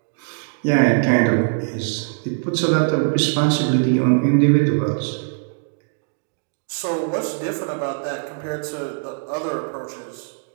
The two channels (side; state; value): left; silent; digital silence